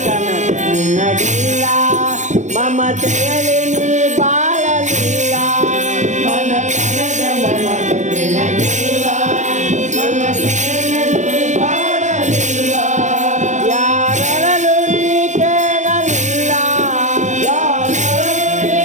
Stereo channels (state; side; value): late; left; 0.35 ms